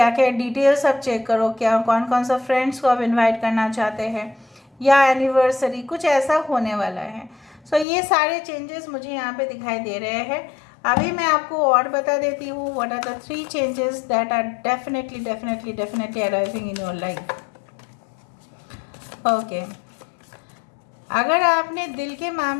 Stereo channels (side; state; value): right; drops out; at 7.9 s